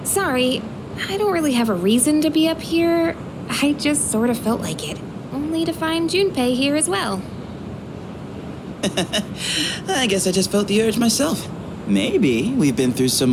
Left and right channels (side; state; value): both; identical; correlation 1.00